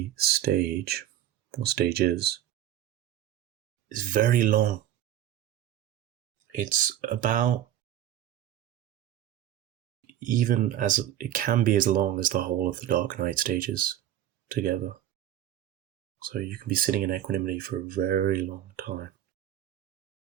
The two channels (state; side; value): quieter; left; 11.9 dB